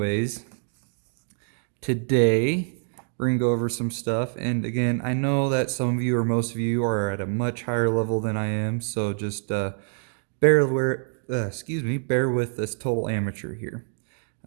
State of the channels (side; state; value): left; silent; 61 dB below the other